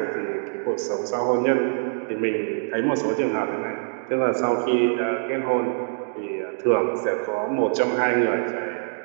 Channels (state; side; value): silent; left; digital silence